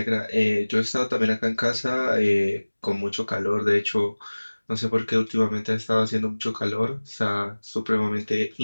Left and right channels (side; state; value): both; inverted; correlation -1.00